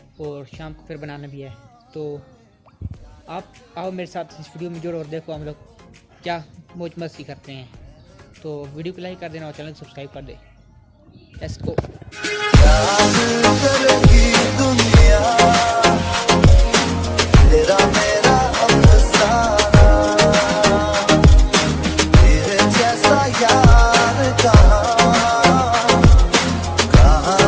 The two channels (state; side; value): identical; both; correlation 1.00